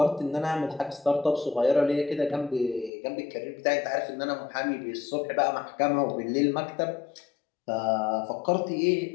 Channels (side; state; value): right; drops out; at 2.9 s